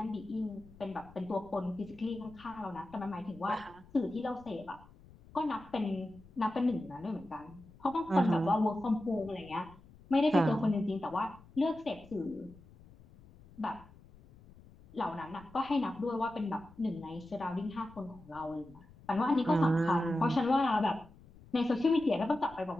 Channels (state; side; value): noise; left; rumble, 23 dB below the sound